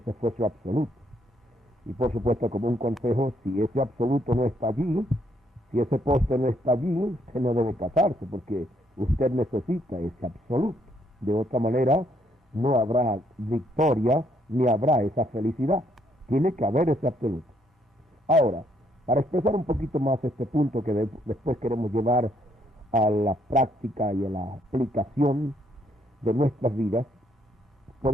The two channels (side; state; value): both; normal; correlation 0.71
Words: fue su absoluto. Y por supuesto, como un consejo, si ese absoluto no está allí, si ese poste no está allí, usted no debe casarse porque usted necesita ese absoluto. De otra manera, no habrá victoria ni habrá esa felicidad. Tiene que haber ese absoluto. Ahora, para expresar un poquito más este punto que después queremos llevar a la práctica y a la aplicación de nuestras vidas,